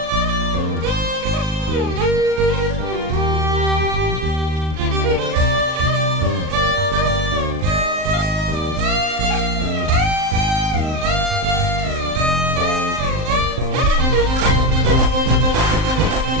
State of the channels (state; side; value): late; left; 39 ms